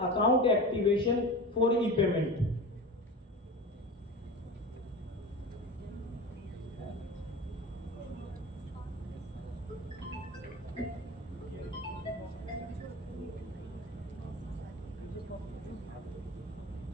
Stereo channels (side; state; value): both; normal; correlation 0.30